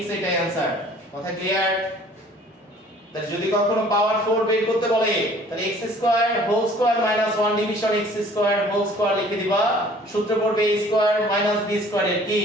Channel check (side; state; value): both; normal; correlation 0.52